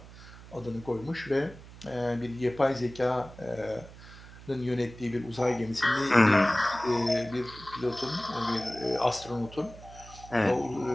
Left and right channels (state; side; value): noise; right; hum, 18 dB below the sound